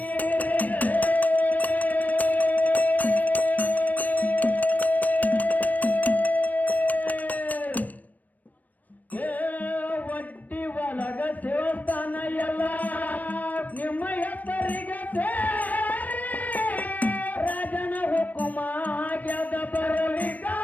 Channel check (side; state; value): right; late; 0.079 ms